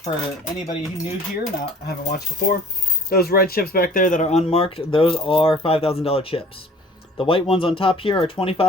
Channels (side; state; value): both; normal; correlation 0.51